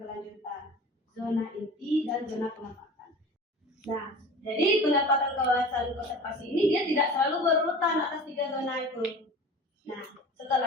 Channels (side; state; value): both; normal; correlation 0.38